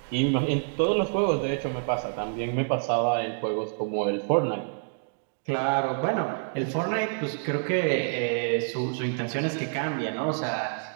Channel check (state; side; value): silent; left; digital silence